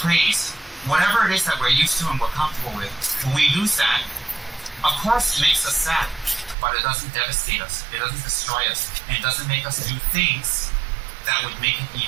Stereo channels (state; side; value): drops out; left; at 6.6 s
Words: praise, whatever it is that we're used to and we're comfortable with, when we lose that, of course it makes us sad, but it doesn't devastate us, it doesn't destroy us, and it doesn't make us do things that would make it